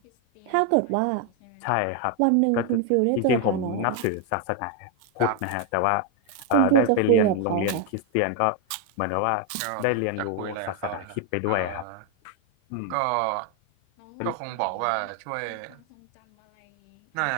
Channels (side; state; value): both; different; correlation 0.01